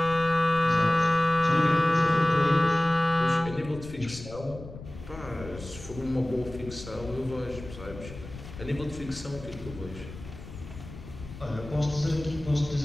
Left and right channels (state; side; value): noise; left; rumble, 14 dB below the sound